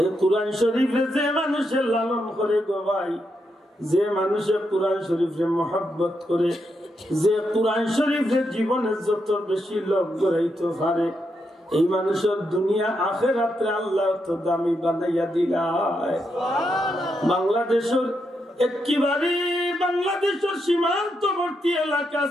কুরআন শরীফে যে মানুষের লালন করে গো ভাই, যে মানুষের কুরআন শরীফে মহব্বত করে, যে কুরআন শরীফের জীবনে যত বেশি লোক গড়াইতে পারে, এই মানুষের দুনিয়া আখিরাতে আল্লাহ তো দামি বানাইয়া দিলায়। বাংলাদেশের একেবারে বাংলাদেশের সীমান্তবর্তী এলাকা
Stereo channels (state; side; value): normal; both; correlation 0.82